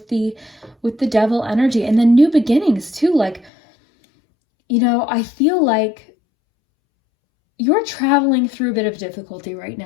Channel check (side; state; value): right; drops out; at 3.5 s